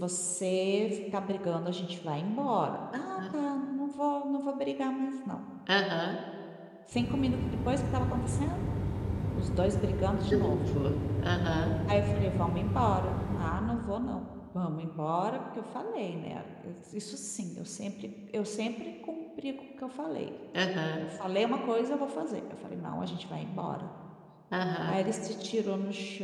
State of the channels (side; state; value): both; identical; correlation 1.00